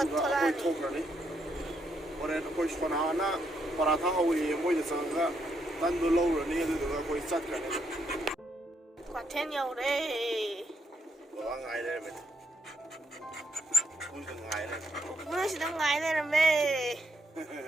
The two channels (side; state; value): both; normal; correlation 0.77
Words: khơi thâu ra ní, rồi khơi cho nó na. Para thang hoi moi de sang ga tan do lo ro ni de ga koi sat ka ne kwa ten yo de wa ngai de me kun de ngai de kun si dang ngai de me